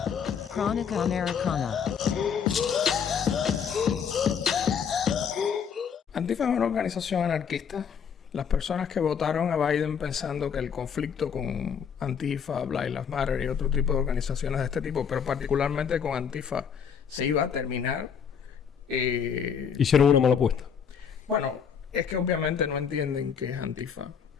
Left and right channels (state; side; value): quieter; right; 7.2 dB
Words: Crónica Americana. Antifa es una organización anarquista. Las personas que votaron a Biden pensando que el conflicto con Antifa, Black Lives Matter y otro tipo de organizaciones de este tipo, pero particularmente con Antifa, se iba a terminar. Hicieron una mala apuesta. Bueno, es que obviamente no entienden qué es Antifa.